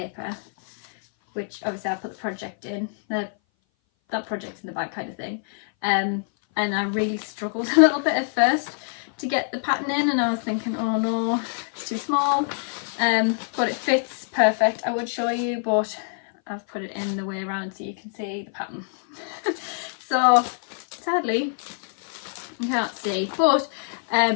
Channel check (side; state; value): right; silent; 58 dB below the other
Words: which obviously I put the project in, that project's in the bag kind of thing. And I really struggled a little bit at first to get the pattern in, and I was thinking, oh no, it's too small. But it fits perfect. I would show you, but I've put it in the way around so you can see the pattern. So sadly you can't see, but